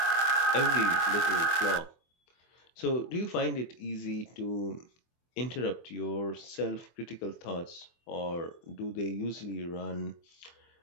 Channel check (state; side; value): late; right; 24 ms